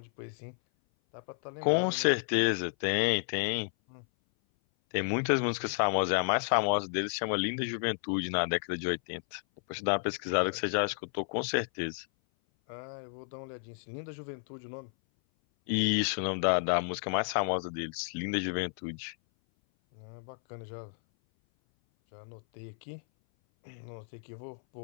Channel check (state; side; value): silent; right; 57 dB below the other